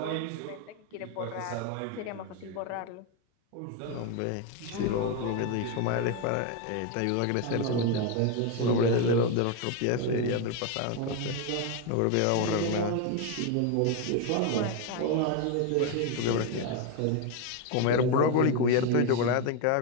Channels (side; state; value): both; different; correlation 0.02